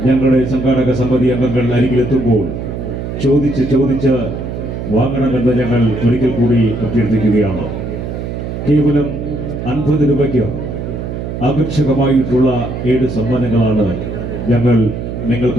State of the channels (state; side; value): noise; right; hum, 6 dB below the sound